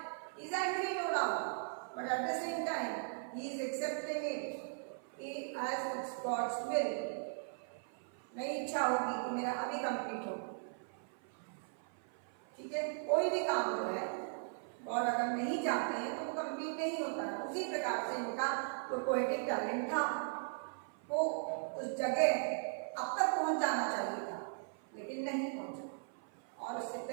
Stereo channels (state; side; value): silent; left; 52 dB below the other